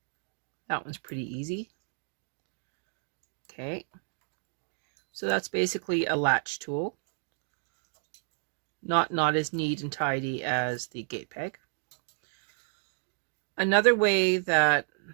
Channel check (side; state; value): left; silent; 57 dB below the other